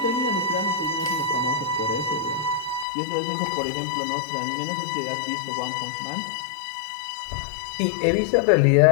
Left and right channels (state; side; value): drops out; right; at 2.9 s